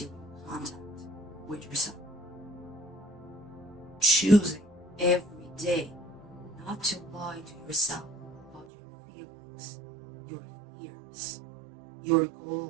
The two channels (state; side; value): drops out; left; at 8.7 s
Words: you in contact with yourself. Choosing every day not to lie to yourself about your feelings, your fears, your